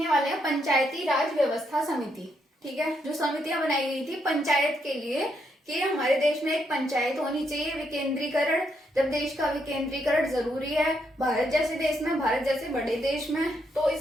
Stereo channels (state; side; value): normal; both; correlation 0.77